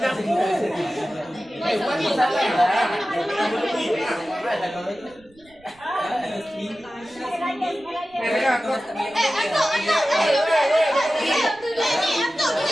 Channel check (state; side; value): noise; right; rumble, 29 dB below the sound